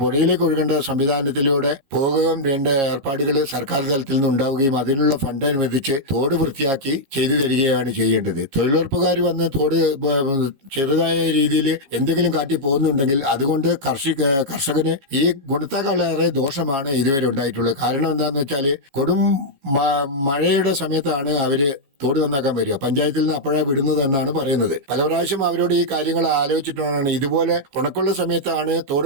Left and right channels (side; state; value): left; late; 15 ms